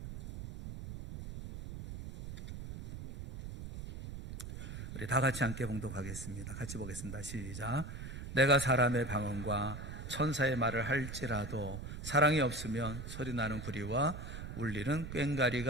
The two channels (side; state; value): right; noise; rumble, 9 dB below the sound